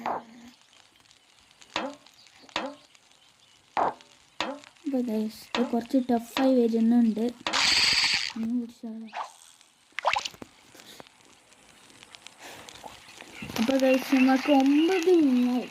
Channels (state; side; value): identical; both; correlation 1.00